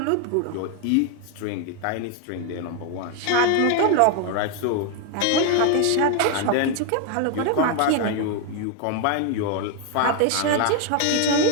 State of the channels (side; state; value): both; different; correlation 0.00